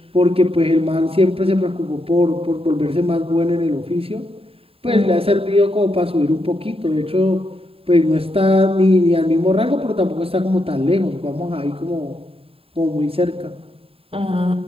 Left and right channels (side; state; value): left; late; 0.27 ms